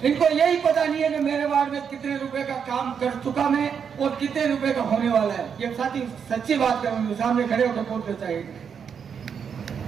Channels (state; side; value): quieter; left; 7.0 dB